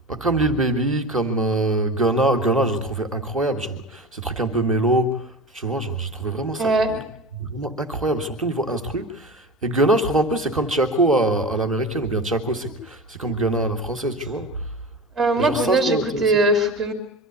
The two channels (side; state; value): both; normal; correlation 0.30